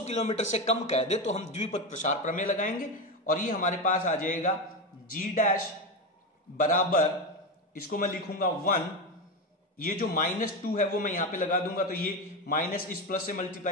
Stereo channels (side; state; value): both; normal; correlation 0.16